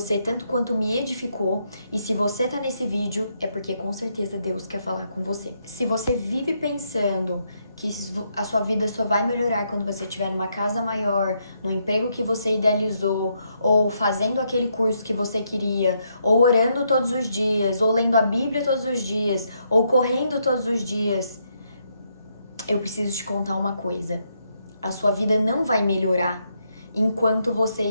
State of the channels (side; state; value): both; inverted; correlation -0.77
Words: tanto quanto me edificou, e se você tá nesse vídeo é porque com certeza Deus quer falar com você. Se você vive pensando que a sua vida só vai melhorar quando você estiver numa casa maior, no emprego que você idealizou, ou fazendo aquele curso que você queria, ou orando todos os dias, ou lendo a Bíblia todos os dias, ou correndo todos os dias, eu preciso te contar uma coisa. A sua vida não vai melhorar enquanto você